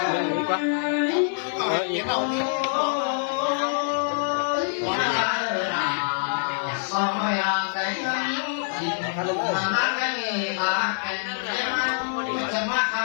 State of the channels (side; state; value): right; silent; digital silence